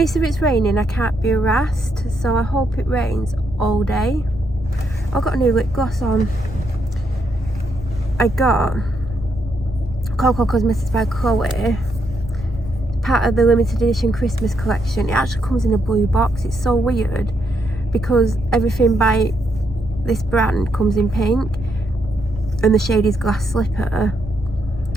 if it's raining I can't be harassed, so I hope it rains all day. I've got a new lip gloss on. I got Coco Cosmetics by Chloe, part of the limited edition Christmas collection. It actually comes in a blue box. It's so weird because everything by this brand comes in pink, and the shade is Glass Slipper,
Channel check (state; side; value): normal; both; correlation 0.78